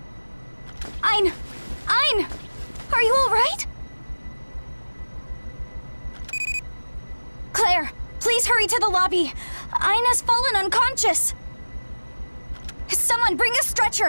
Ein! Ein! Are you all right? Claire, please hurry to the lobby. Ein has fallen unconscious. Someone bring a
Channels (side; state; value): both; inverted; correlation -1.00